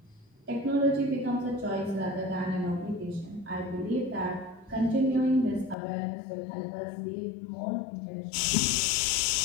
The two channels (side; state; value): right; drops out; at 5.8 s